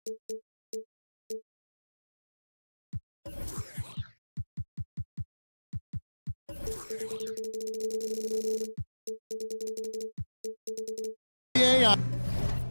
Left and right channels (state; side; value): inverted; both; correlation -1.00